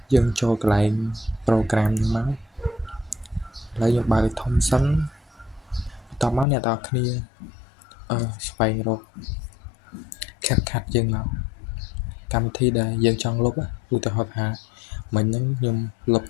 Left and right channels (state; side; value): drops out; right; at 6.5 s